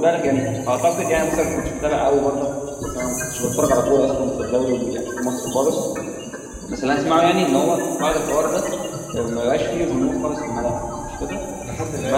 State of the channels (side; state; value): both; identical; correlation 1.00